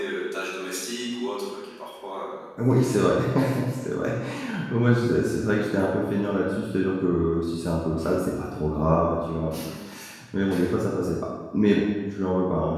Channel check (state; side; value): identical; both; correlation 1.00